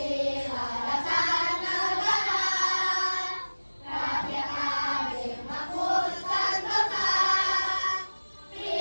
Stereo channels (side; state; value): both; inverted; correlation -1.00